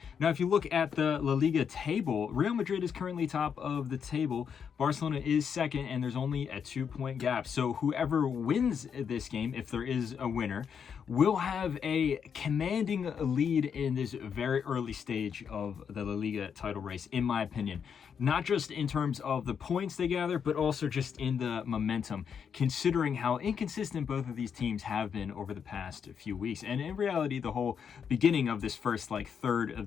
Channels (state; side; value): quieter; right; 7.2 dB